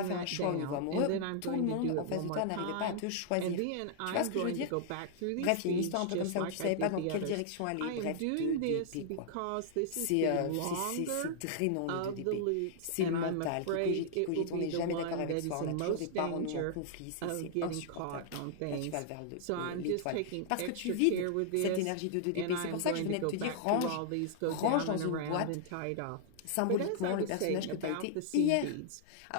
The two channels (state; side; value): different; both; correlation -0.01